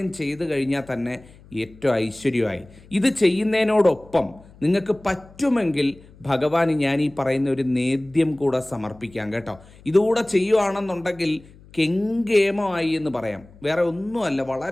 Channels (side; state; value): left; noise; hum, 24 dB below the sound